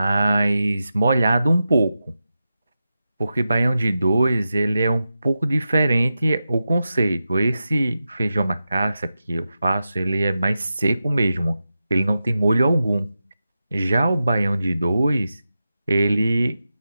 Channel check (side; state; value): both; inverted; correlation -0.91